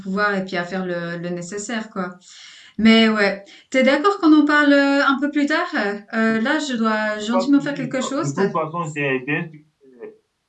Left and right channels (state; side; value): identical; both; correlation 1.00